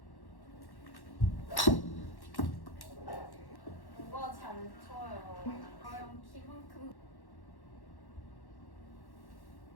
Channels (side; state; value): right; late; 1.1 ms